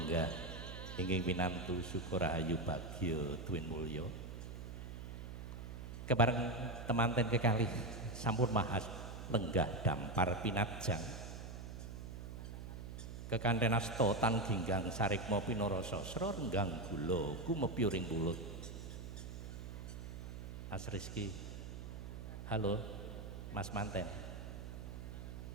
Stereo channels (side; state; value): right; noise; hum, 9 dB below the sound